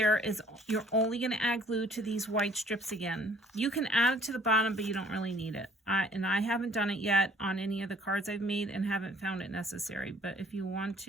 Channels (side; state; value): both; normal; correlation 0.57